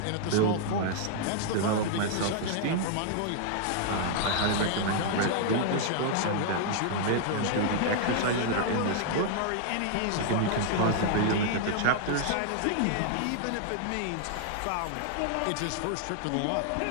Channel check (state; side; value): different; both; correlation -0.01